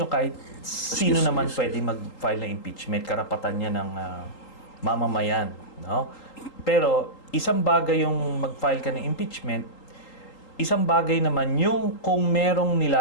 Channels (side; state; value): right; late; 3.8 ms